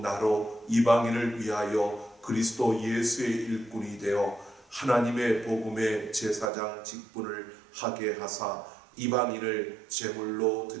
이방인을 위하여 그리스도 예수의 일꾼이 되어 하나님의 복음의 제사장 직분을 하게 하사 이방인을 제물로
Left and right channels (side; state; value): left; drops out; at 6.5 s